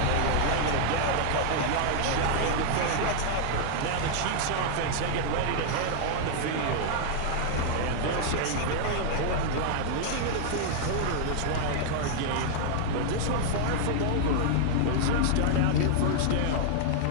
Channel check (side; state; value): both; different; correlation -0.01